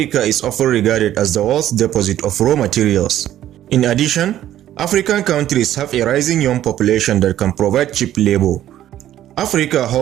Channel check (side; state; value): left; quieter; 12.3 dB